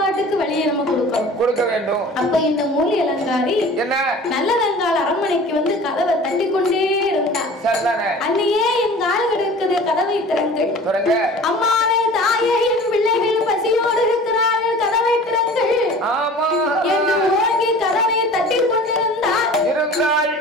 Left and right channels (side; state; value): both; normal; correlation 0.42